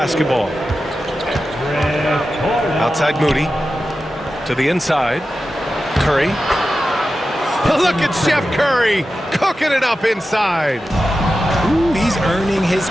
Outside Moody. To the inside. Curry. Look at Chef Curry cooking it up inside. Ooh, he's earning his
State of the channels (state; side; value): normal; both; correlation 0.92